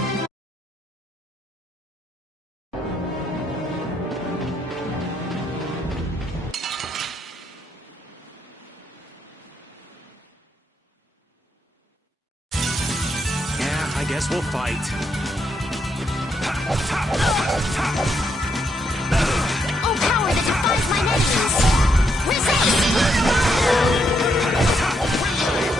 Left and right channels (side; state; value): both; normal; correlation 0.77